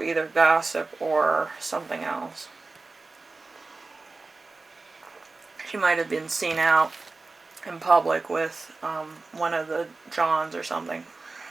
either gossip or something else. She might have been seen out in public with one of the Johns or something.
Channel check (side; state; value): left; quieter; 3.7 dB